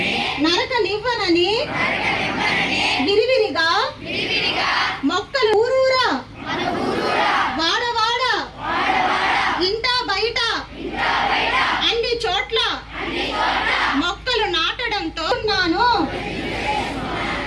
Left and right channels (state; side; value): identical; both; correlation 1.00